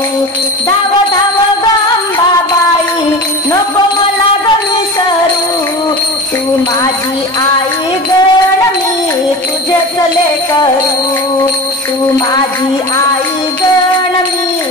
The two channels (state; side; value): normal; both; correlation 0.31